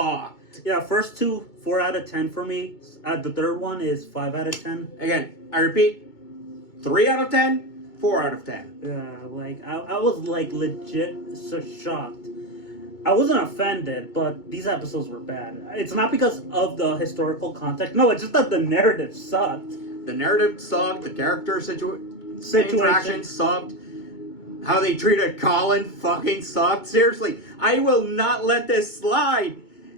Yeah, first 2, 4 out of 10 for me. The third one is 5 out of 10. Again, I repeat, 3 out of 10, 4 out of 10. Yeah, like, I was, like, legit so shocked. I wasn't offended, but these episodes were bad. It's not because of the historical context. No, it's just that the narrative sucked. The narrative sucked, the character interaction sucked, how they treated Colin fucking sucked. Seriously, I will not let this slide.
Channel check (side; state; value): right; late; 2.2 ms